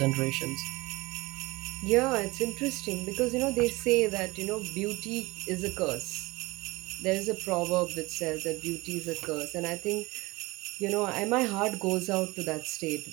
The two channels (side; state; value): left; quieter; 22.3 dB